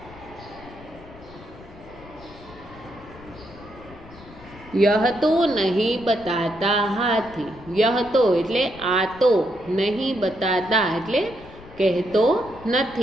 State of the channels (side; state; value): left; noise; rumble, 20 dB below the sound